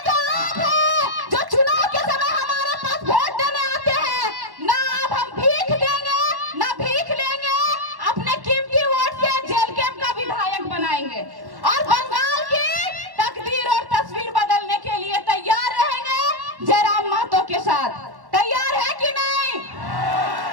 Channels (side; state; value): left; late; 1.1 ms